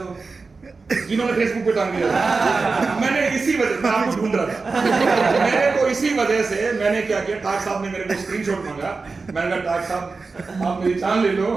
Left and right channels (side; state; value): left; quieter; 4.2 dB